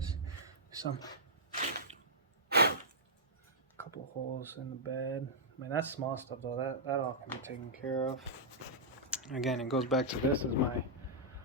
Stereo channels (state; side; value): normal; both; correlation -0.11